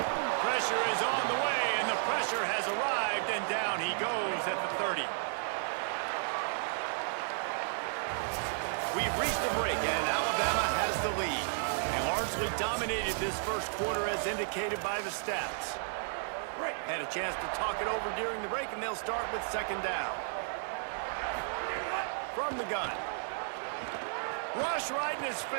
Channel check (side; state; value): left; silent; digital silence